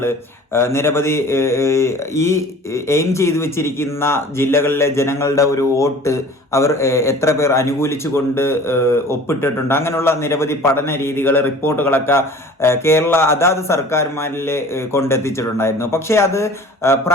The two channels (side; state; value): both; normal; correlation 0.44